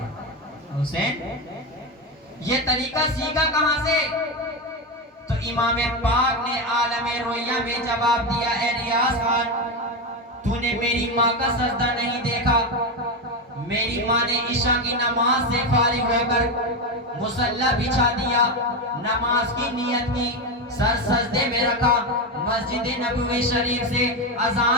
حسین یہ طریقہ سیکھا کہاں سے؟ تو امام پاک نے عالم رویا میں جواب دیا اے ریاض خان تو نے میری ماں کا سجدہ نہیں دیکھا. میری ماں نے عشاء کی نماز سے فارغ ہو کر مصلی بچھا دیا, نماز کی نیت کی, سر سجدے میں رکھا, مسجد نبوی شریف سے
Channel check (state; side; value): normal; both; correlation 0.13